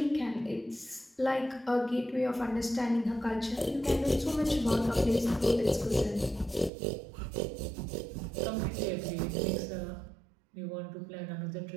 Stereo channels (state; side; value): drops out; left; at 6.7 s